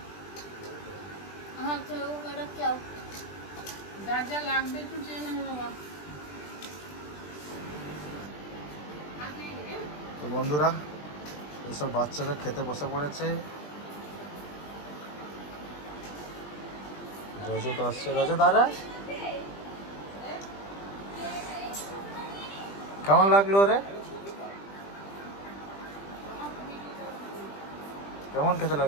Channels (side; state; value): right; late; 20 ms